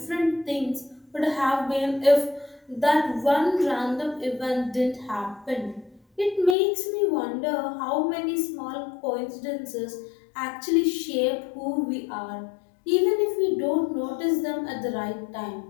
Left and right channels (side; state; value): right; drops out; at 6.6 s